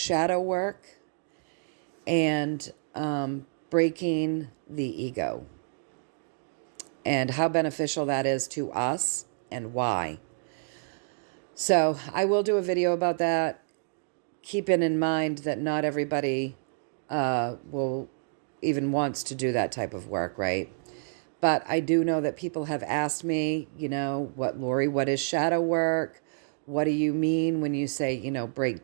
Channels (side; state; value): left; silent; digital silence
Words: work and breaking the ego and how beneficial that is to us and why. So I will do a video about that. Keeping in mind that not everybody will even wants to do that type of work, right? But I do know that people have asked me, Lorri, what is shadow work? What do you mean when you say, break